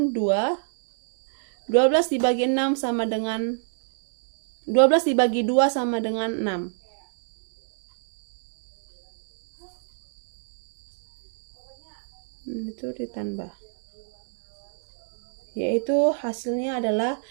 2. 12 dibagi 6 sama dengan 12 dibagi 2 sama dengan 6. itu ditambah, yaitu hasilnya adalah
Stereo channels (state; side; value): silent; left; digital silence